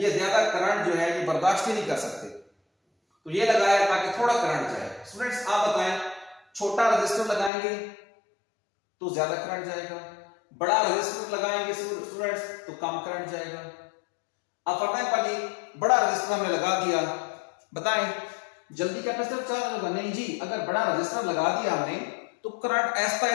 ज्यादा करंट जो है ये बर्दाश्त ही नहीं कर सकते, तो ये लगाया ताकि थोड़ा करंट जाए। स्टूडेंट्स आप बताएं, छोटा रजिस्टर लगाएंगे तो ज्यादा करंट जाएगा, बड़ा रजिस्टर लगाएंगे स्टूडेंट्स तो कम करंट जाएगा। अब फटाफट बड़ा रजिस्टर हमने लगा दिया, बताएं जल्दी कैपेसिटर चार्ज होगा? नहीं जी, अगर बड़ा रजिस्टर लगा दिया हमने तो करंट ऐसा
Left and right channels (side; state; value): right; drops out; at 7.5 s